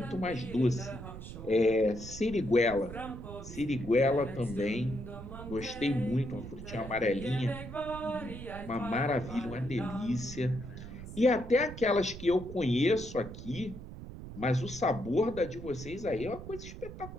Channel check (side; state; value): right; noise; rumble, 11 dB below the sound